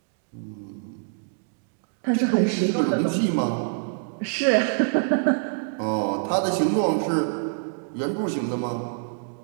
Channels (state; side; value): silent; left; digital silence